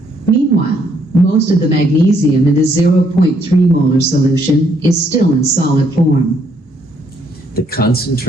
Meanwhile, most of the magnesium in the 0.3 molar solution is still in solid form. The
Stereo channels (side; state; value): both; normal; correlation 0.70